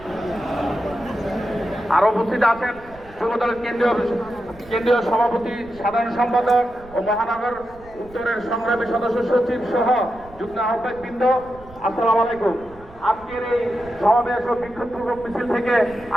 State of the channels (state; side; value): noise; right; rumble, 21 dB below the sound